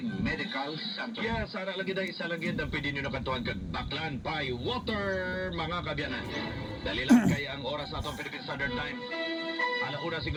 Center. Yeah, sana lagi na isa lang yun ang pwede nyo nakantuhan kag Baklan by Water, mga kabyanan. Dali lang kaya ang oras natin Philippine Standard Time. Alauna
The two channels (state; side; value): identical; both; correlation 1.00